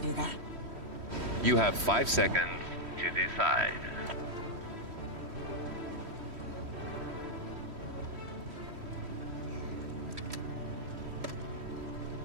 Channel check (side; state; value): left; late; 3.1 ms